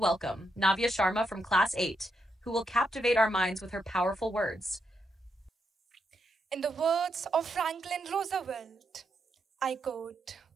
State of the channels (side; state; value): both; normal; correlation 0.81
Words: Navya Sharma from Class 8, who will captivate our minds with her powerful words. In the words of Franklin Roosevelt, I quote,